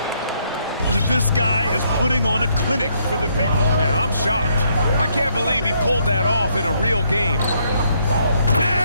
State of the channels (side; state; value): both; inverted; correlation -0.71